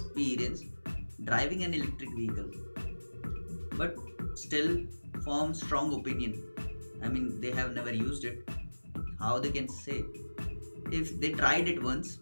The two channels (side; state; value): both; inverted; correlation -1.00